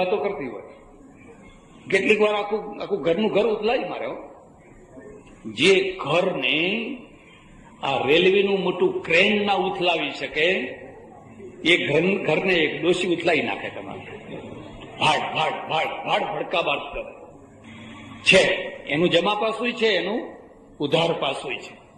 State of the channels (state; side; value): identical; both; correlation 1.00